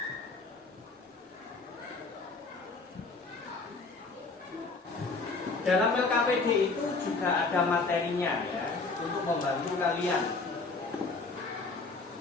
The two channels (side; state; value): right; quieter; 3.9 dB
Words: dalam LKPD itu juga ada materinya ya, untuk membantu kalian.